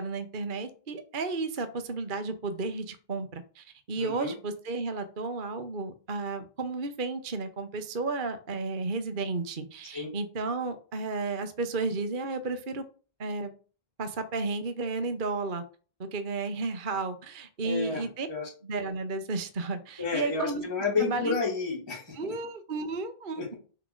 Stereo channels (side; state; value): left; late; 2.3 ms